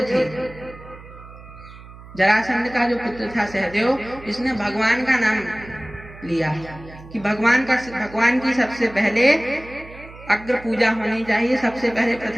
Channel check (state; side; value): noise; right; hum, 18 dB below the sound